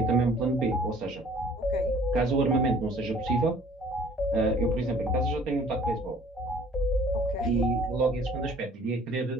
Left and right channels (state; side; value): normal; both; correlation 0.54